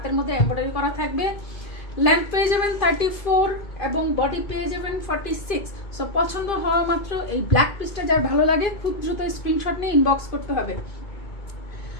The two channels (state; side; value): late; right; 2.4 ms